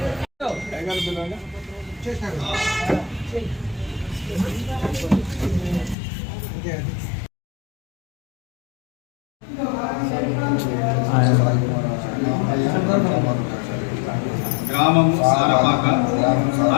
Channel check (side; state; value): right; drops out; at 6.0 s